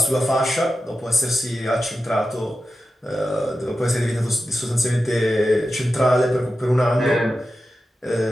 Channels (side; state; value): both; normal; correlation 0.92